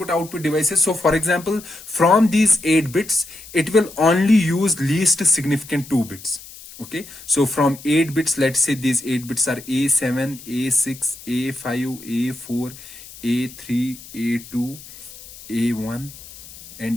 output devices? So for example, from these 8 bits it will only use least significant 2 bits. Okay, so from 8 bits, let's say these 8 bits are A7, A6, A5, A4, A3, A2, A1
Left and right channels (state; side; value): noise; left; hiss, 17 dB below the sound